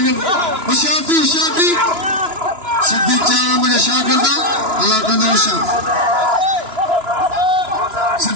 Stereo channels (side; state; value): left; late; 2.9 ms